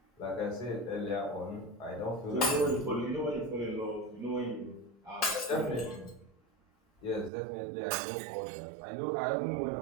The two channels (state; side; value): drops out; left; at 7.3 s